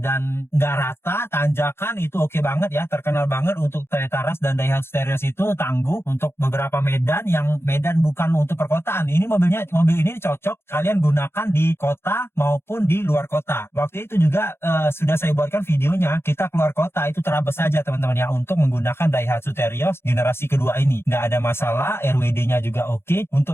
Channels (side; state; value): right; late; 0.12 ms